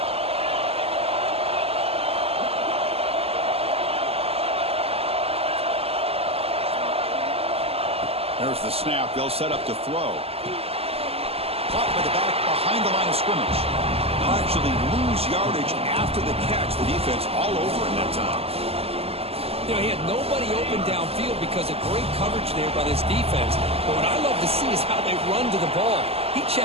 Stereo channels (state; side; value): late; left; 0.29 ms